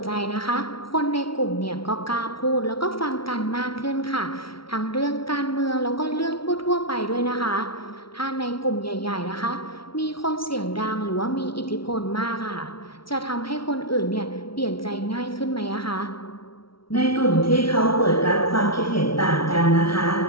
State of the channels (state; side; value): late; right; 0.74 ms